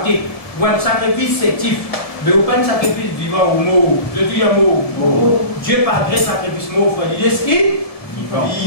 ou un sacrifice sétif. Mais vous pas un sacrifice vivant ou mort. Je dis un mot. Dieu pas gré sacrifice mort. Il dit ce qui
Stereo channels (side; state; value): right; late; 1.7 ms